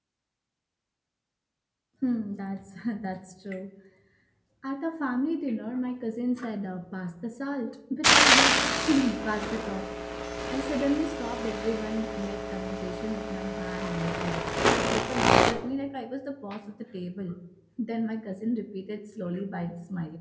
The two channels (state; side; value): identical; both; correlation 1.00